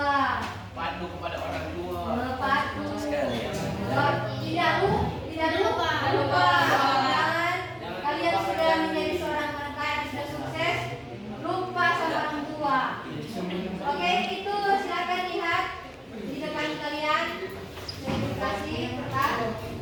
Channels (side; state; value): both; identical; correlation 1.00